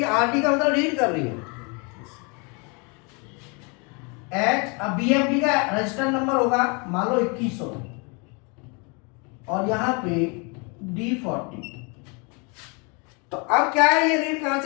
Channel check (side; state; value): right; quieter; 32.3 dB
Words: है, RD का मतलब रीड कर रही है। अब बीएफडी का रजिस्टर नंबर होगा मान लो 2100 और यहाँ पे D40। तो अब क्या है, ये रीड कहां